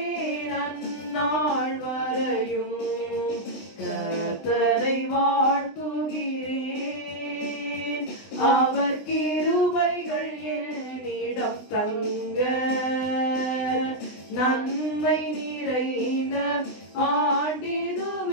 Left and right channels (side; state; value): right; late; 20 ms